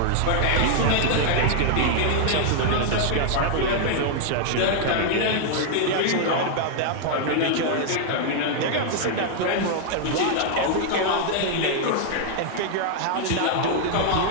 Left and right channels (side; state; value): both; different; correlation 0.00